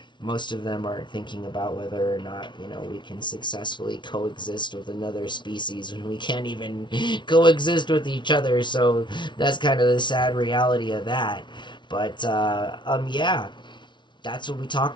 most of them aren't thinking about whether or not we can successfully coexist with another species when we can't even coexist with each other. So that's kind of the sad reality of that. But yeah, that's what we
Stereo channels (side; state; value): right; late; 0.23 ms